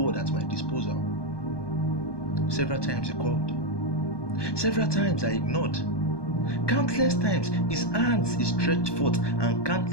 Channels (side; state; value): right; late; 1.2 ms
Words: at my disposal. Several times he called. Several times I ignored. Countless times his hands he stretched forth, and